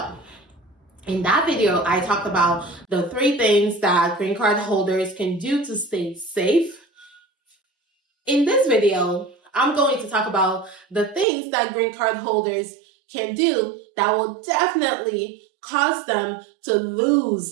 in that video, I talked about the 3 things that green card holders can do to stay safe. In this video, I'm going to talk about the things that green card holders can do that will definitely cause them to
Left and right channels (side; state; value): left; drops out; at 11.2 s